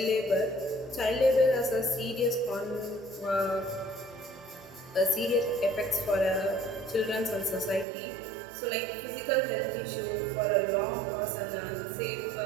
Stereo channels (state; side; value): drops out; left; at 7.9 s